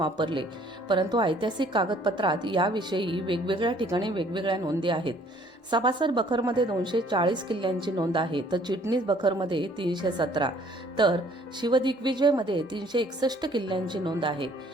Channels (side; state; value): both; normal; correlation 0.58